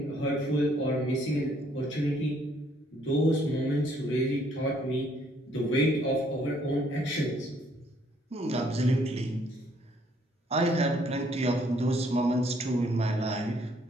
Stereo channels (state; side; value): normal; both; correlation 0.66